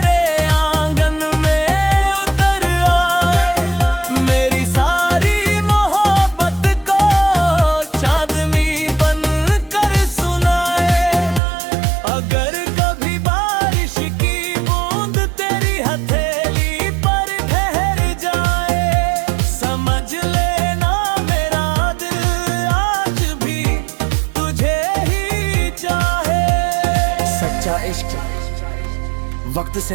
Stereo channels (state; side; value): drops out; left; at 11.4 s